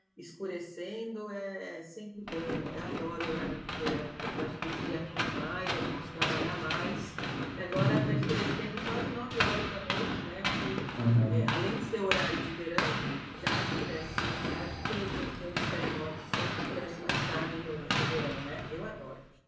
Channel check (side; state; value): both; identical; correlation 1.00